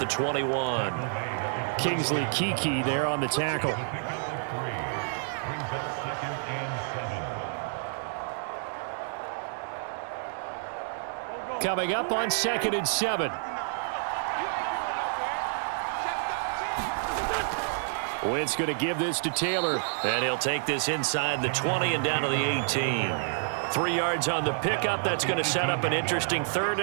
21. Kingsley Keke there on the tackle. Coming up on 2nd and 7. Wentz going to give this to Taylor. And he'll take this inside the 20 and down to the 18. 3 yards on the pickup. That's going to set up an interesting 3rd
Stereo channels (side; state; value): left; silent; digital silence